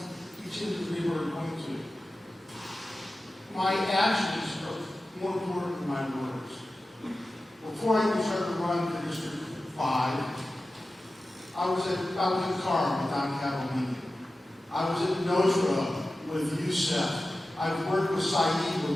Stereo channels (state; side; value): normal; both; correlation 0.94